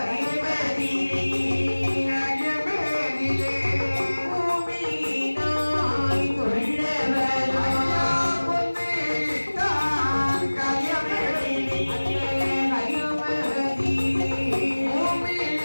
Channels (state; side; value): inverted; both; correlation -1.00